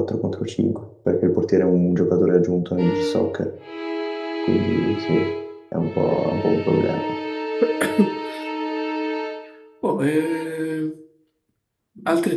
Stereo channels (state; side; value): identical; both; correlation 1.00